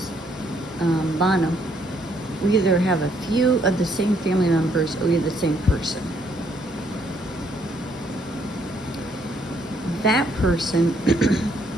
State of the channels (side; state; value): both; normal; correlation 0.69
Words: Bono. We either have a few of the same family members or we're the same person. That person,